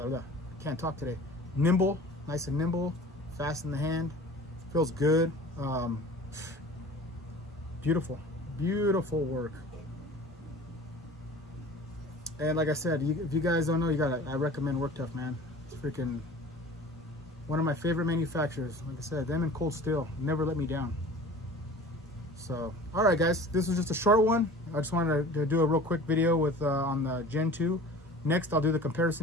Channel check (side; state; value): both; normal; correlation 0.42